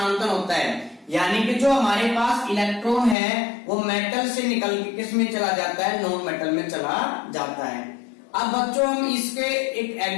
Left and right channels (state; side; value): drops out; right; at 3.2 s